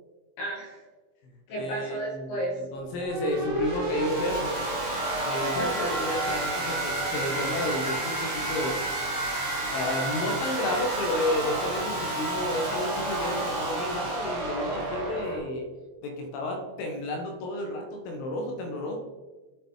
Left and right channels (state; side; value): late; right; 23 ms